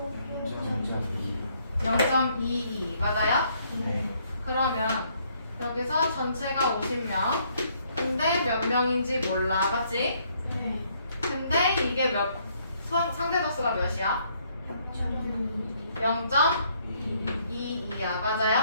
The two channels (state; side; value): inverted; both; correlation -0.68